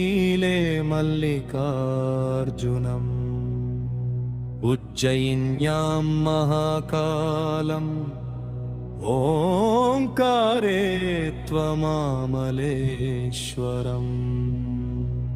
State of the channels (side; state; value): both; identical; correlation 1.00